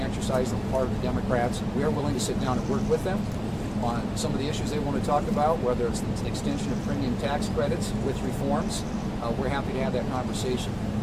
exercise on the part of the Democrats. We are willing to sit down and work with them on some of the issues they want to talk about, whether it's the extension of premium tax credits with reforms. We're happy to have that conversation.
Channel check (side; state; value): both; identical; correlation 1.00